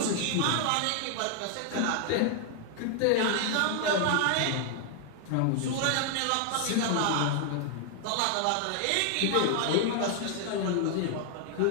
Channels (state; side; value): different; both; correlation 0.00